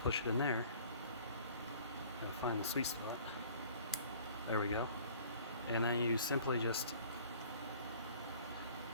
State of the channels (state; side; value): inverted; both; correlation -0.51